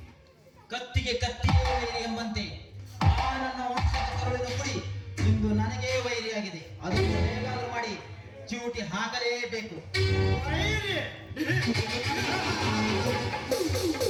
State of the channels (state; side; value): identical; both; correlation 1.00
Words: ಕತ್ತಿಗೆ ಕತ್ತಿಯೇ ವೈರಿ ಎಂಬಂತೆ ಆ ನನ್ನ ವಂಶದ ಕರುಳಿನ ಕುಡಿ ಇಂದು ನನಗೇ ವೈರಿಯಾಗಿದೆ. ಅದನ್ನು ಹೇಗಾದರೂ ಮಾಡಿ ಚೂಟಿ ಹಾಕಲೇಬೇಕು.